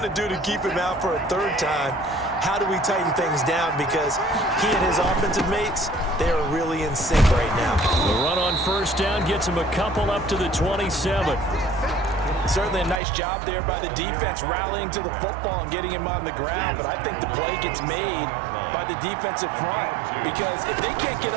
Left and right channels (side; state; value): left; drops out; at 13.0 s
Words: to do to keep him out for a 3rd time? How do we tighten things down? Because he and his offensive mates, they are really in sync right now. The run on 1st down gets him a couple up to the 27. Certainly a nice job there by the defense rallying to the football and getting him on the ground, but I think the play gets made by the defensive front because if they can't get